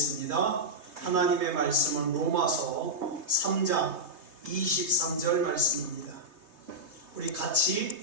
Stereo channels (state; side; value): late; left; 3.2 ms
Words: 하나님의 말씀은 로마서 3장 23절 말씀입니다. 우리